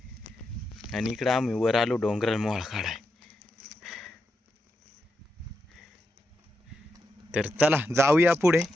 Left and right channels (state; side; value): normal; both; correlation 0.86